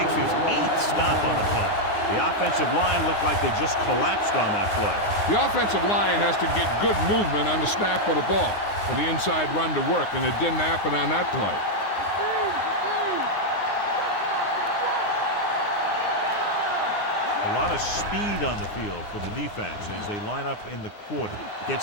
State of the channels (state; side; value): late; right; 9.6 ms